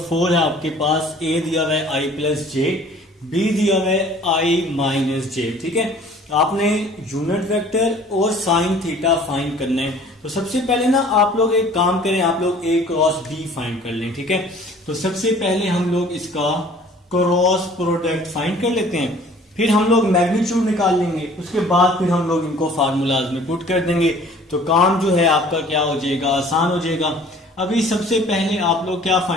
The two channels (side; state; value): both; normal; correlation 0.51